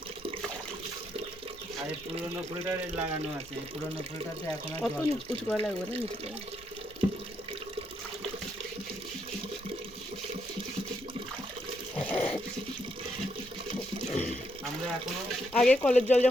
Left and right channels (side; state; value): both; normal; correlation 0.77